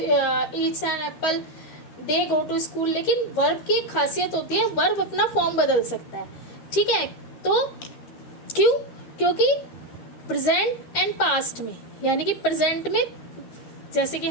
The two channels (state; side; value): late; right; 12 ms